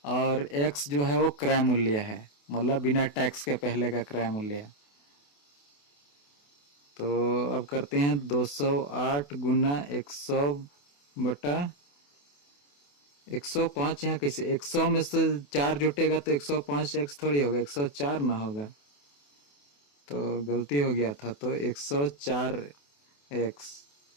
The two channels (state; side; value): late; right; 28 ms